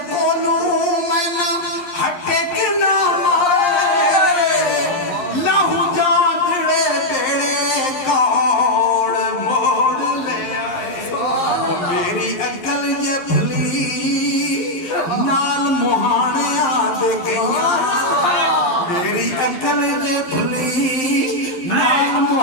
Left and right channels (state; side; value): late; right; 11 ms